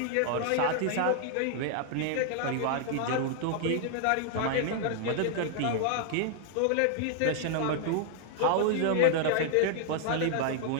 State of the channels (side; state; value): both; different; correlation 0.00